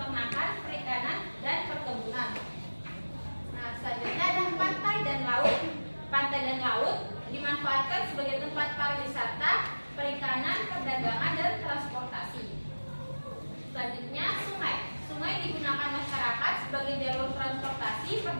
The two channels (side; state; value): both; inverted; correlation -1.00